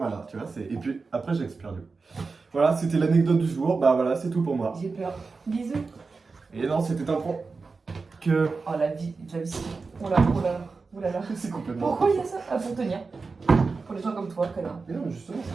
tu vois c'est... Et puis après j'expire du coup. Voilà c'était l'anecdote du jour, bah voilà c'est tout pour moi. J'ai peur. Bisous. Et non c'était un point que... Oh la vie, oh là, oh là, oh là là. C'est complètement... Pourquoi il y a ça? Ah, pour tenir. Pour les gens comme toi, connard. Mais non, mais justement, ça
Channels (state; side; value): quieter; left; 4.3 dB